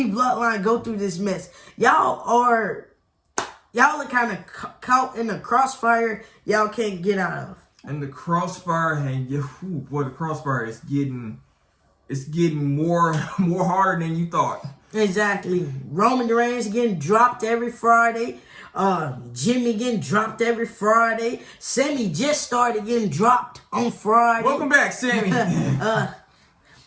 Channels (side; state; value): both; identical; correlation 1.00